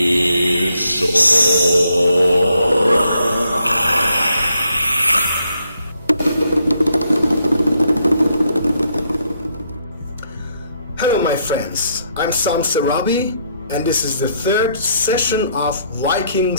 my friends, I'm Sam Sarabi and this is the third session of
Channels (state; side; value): inverted; both; correlation -0.74